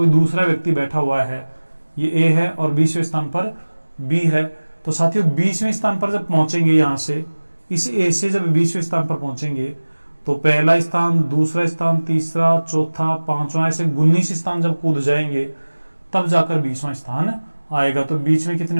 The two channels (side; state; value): both; inverted; correlation -1.00